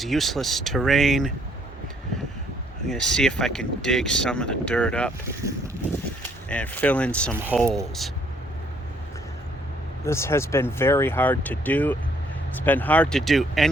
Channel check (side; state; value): both; normal; correlation 0.66